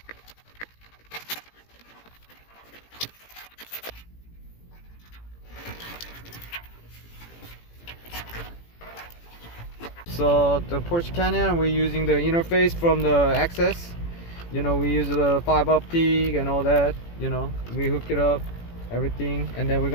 So the Porche Cayenne, we're using the interface from the access. You know, we use the 5 optic and all that. You know, we hook it up, everything, and then we're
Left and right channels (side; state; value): right; late; 18 ms